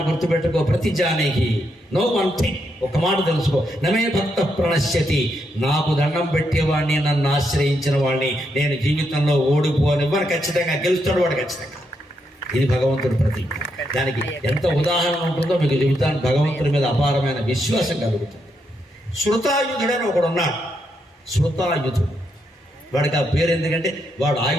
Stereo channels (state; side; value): normal; both; correlation 0.80